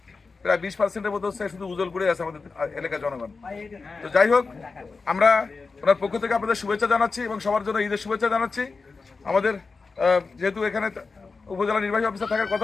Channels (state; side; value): quieter; right; 4.3 dB